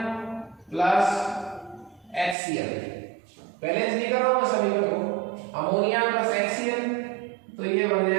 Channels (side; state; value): left; drops out; at 2.4 s